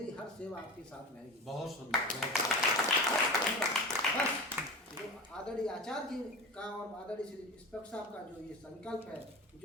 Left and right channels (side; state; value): both; normal; correlation 0.31